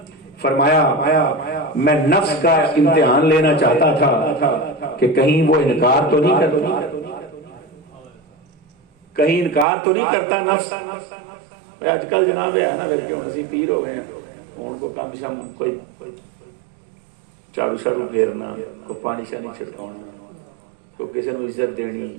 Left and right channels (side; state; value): left; drops out; at 9.7 s